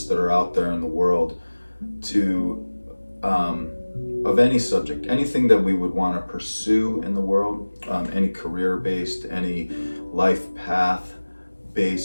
that are out there in the world to, of any subject, anything that we would want to pursue in the world, any career-based, any life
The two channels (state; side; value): inverted; both; correlation -1.00